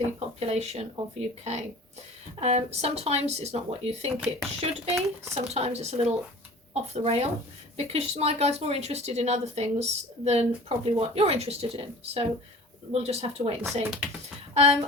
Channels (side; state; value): both; normal; correlation 0.42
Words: population of UK. Sometimes it's not what you think it should be, sometimes it's a little off the rail, because my guide's more interested in other things than probably what you're interested in, so we'll just have to wait and see.